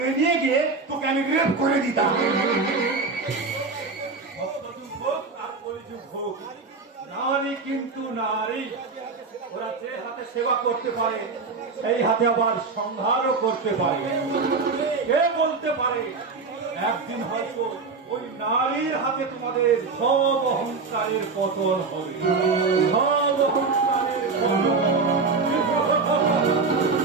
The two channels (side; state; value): left; quieter; 4.4 dB